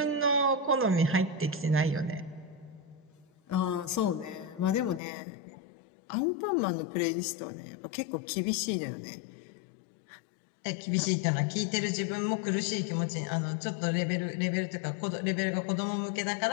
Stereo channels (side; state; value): right; drops out; at 5.0 s